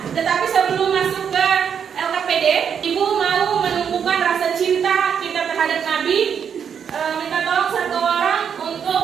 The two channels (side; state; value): left; quieter; 7.6 dB